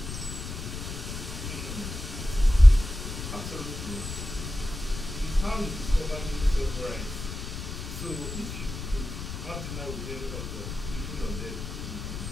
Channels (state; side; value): noise; left; rumble, 7 dB below the sound